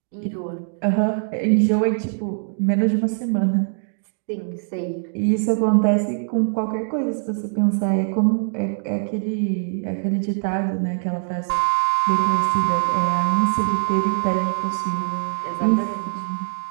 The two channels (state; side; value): silent; left; digital silence